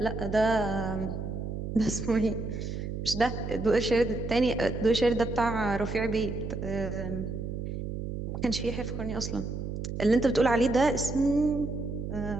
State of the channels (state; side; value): noise; right; hum, 5 dB below the sound